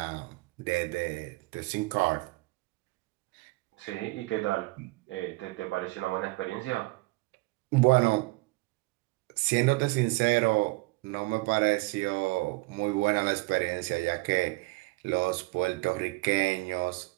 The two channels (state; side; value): quieter; left; 24.2 dB